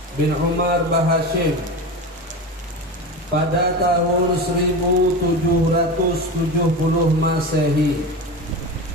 bin Umar Bahashim pada tahun 1770 Masehi.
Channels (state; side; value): normal; both; correlation 0.25